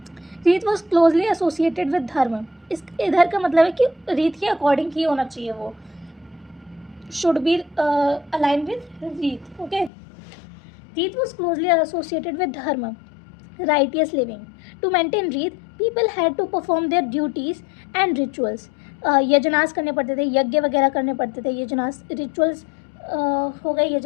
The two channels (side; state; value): right; drops out; at 9.9 s